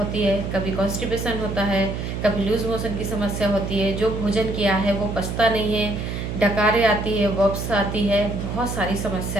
है, कभी कॉन्स्टिपेशन होता है, कभी लूज मोशन की समस्या होती है, जो भोजन किया है वो पचता नहीं है, डकारें आती है, वॉप्स आती है, बहुत सारी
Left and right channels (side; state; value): right; noise; hum, 4 dB below the sound